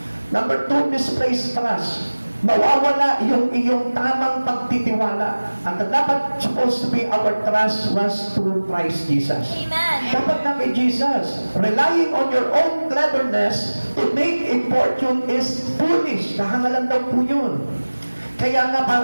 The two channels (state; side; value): inverted; both; correlation -1.00